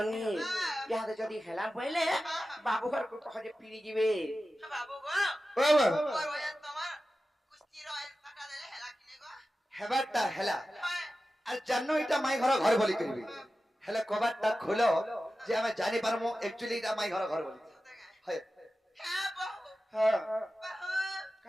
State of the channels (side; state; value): both; normal; correlation 0.94